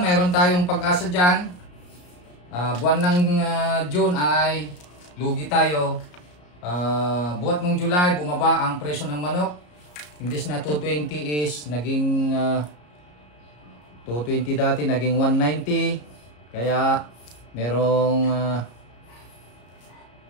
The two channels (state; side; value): late; right; 34 ms